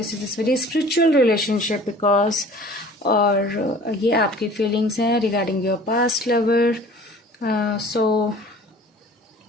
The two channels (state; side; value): normal; both; correlation 0.46